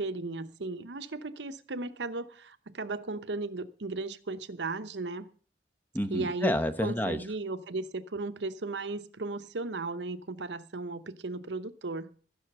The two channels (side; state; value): both; normal; correlation 0.38